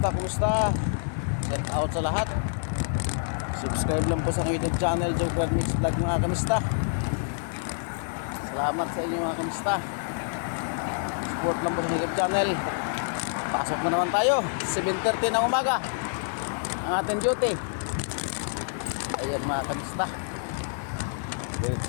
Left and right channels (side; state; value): right; silent; digital silence